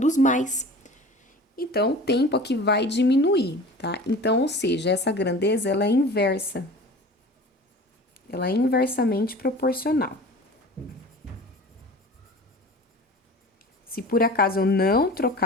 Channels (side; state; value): both; normal; correlation 0.39